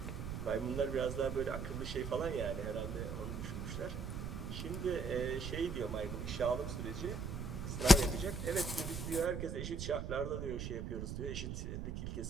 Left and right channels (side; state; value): right; noise; rumble, 4 dB below the sound